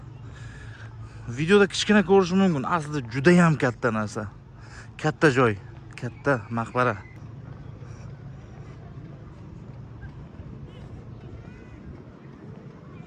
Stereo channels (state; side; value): identical; both; correlation 1.00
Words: videoda kichkina ko'rishi mumkin. Aslida juda ham katta narsa. Katta joy, katta maqbara.